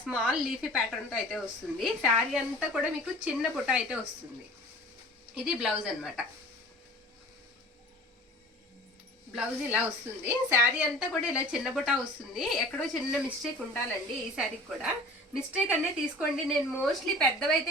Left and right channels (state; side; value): normal; both; correlation 0.44